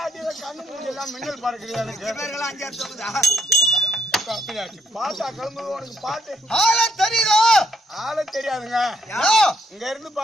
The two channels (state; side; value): normal; both; correlation 0.73